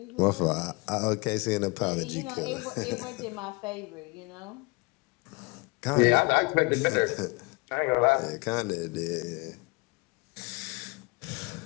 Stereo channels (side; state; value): right; quieter; 27.4 dB